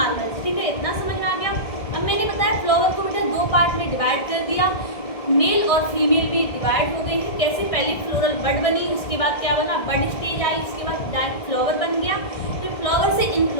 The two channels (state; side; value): late; right; 1.6 ms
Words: ठीक है, इतना समझ में आ गया। अब मैंने बताया फ्लावर को बेटा दो पार्ट में डिवाइड कर दिया, मेल और फीमेल भी डिवाइड हो गए हैं। कैसे, पहले फ्लोरल बड बनी, उसके बाद क्या बना, बड स्टेज आई, उसके बाद डायरेक्ट फ्लावर बन गया, फिर फ्लावर से